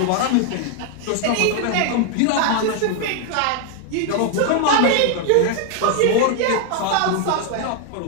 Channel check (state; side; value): different; both; correlation 0.00